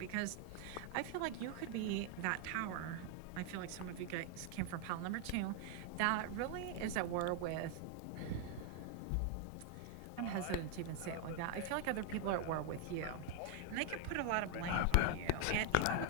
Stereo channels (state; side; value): different; both; correlation 0.00